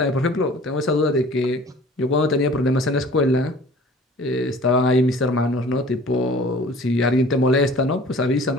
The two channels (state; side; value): normal; both; correlation 0.47